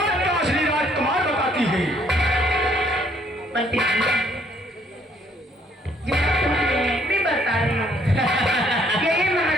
का असली राजकुमार बताती है। मंत्री जी, जो मैं बता रही हूँ, यही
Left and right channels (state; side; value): normal; both; correlation 0.66